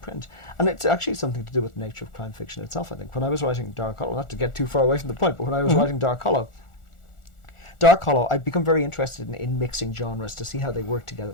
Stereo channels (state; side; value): late; right; 1.4 ms